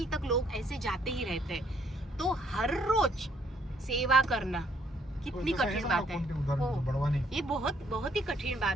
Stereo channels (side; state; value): both; normal; correlation 0.67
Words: तक लोग ऐसे जाते ही रहते हैं। तो हर रोज सेवा करना कितनी कठिन बात है। बड़वानी ये बहुत बहुत ही कठिन